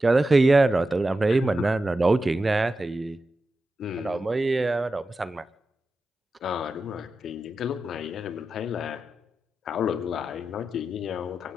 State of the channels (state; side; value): normal; both; correlation 0.91